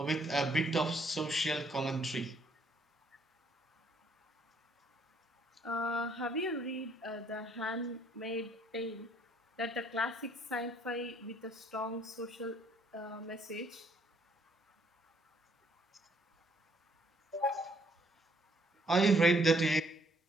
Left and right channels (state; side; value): normal; both; correlation 0.66